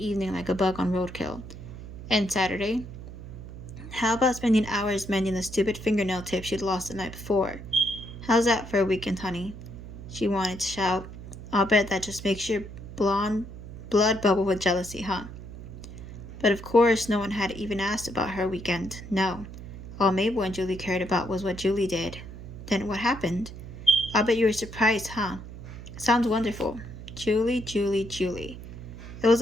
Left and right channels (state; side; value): noise; right; hum, 12 dB below the sound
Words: like a bug on roadkill. And Saturday? How about spending hours mending the stupid fingernail tip she'd lost the night before? How's that for a weekend, honey? She wanted to shout. I'll bet that just makes your blonde blood bubble with jealousy, huh? But of course, no one had even asked about her weekend. No. All Mabel and Julie cared about was what Julie did. Then what happened? I'll bet you were surprised, huh? Sounds wonderful. Julie, Julie, Julie. It was